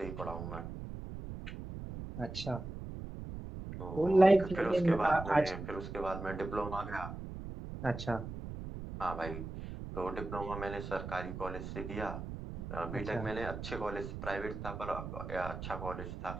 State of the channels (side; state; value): right; noise; rumble, 8 dB below the sound